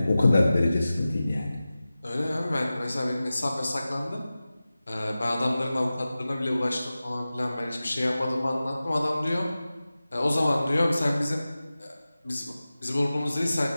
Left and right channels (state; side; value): inverted; both; correlation -0.96